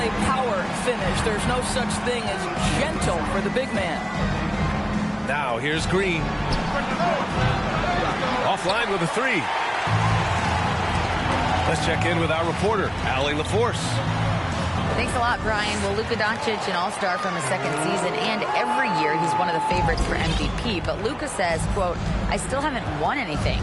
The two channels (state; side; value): identical; both; correlation 1.00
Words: power finish. There's no such thing as gentle for the big man. Now here's Green. Offline with a 3. Let's check in with our reporter, Allie LaForce. Thanks a lot, Brian. Well, Luka Doncic, an all-star from his second season, and every year he's one of the favorites for MVP. But Luka says, quote, I still haven't won anything,